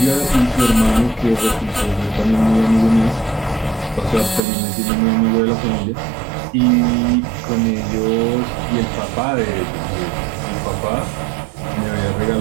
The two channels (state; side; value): drops out; left; at 4.4 s